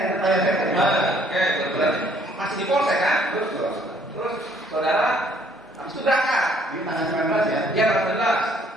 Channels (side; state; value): both; normal; correlation 0.62